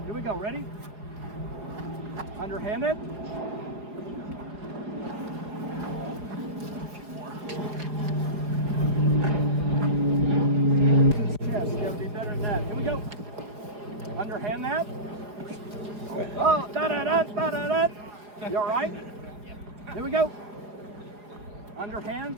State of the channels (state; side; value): late; left; 4.8 ms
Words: Here we go, ready? Underhand it. Chest, you gotta be better than that. Here we go. Underhand that. Oh, da-da-da. You all right? Here we go. Underhand.